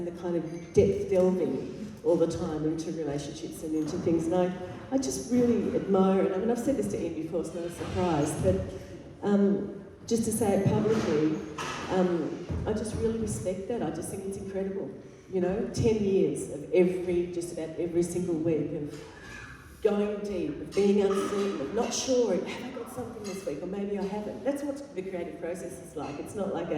the kind of depth delving all the time into relationships and into things, and I just really admire it. I mean, I've said this to Ian before, it's not a surprise, but just to say it publicly, I just really respect that. I just think it's incredible. 10 years of just about every single week of going deep, of being uncertain, of not sure, have I got something this week, or maybe I haven't. That's what the creative process is like. It's not like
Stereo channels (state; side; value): identical; both; correlation 1.00